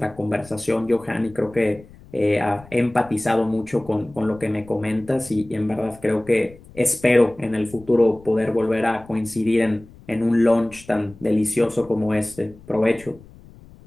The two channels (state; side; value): noise; left; rumble, 22 dB below the sound